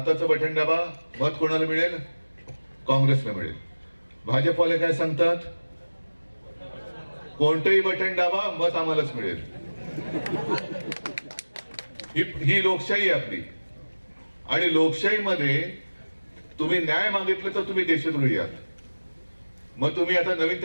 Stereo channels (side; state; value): both; inverted; correlation -1.00